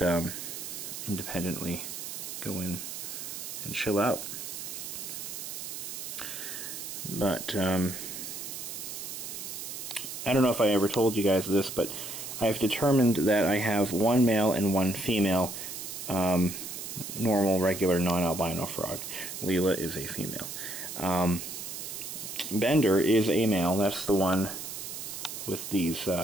independently go in and chill out. But I don't know if I ever told you guys this, but I've determined that I have 1 male and 1 female normal, regular, non-albino frog. Leela is a female. Bender is a male. That's the one with these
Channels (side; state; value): right; noise; hiss, 7 dB below the sound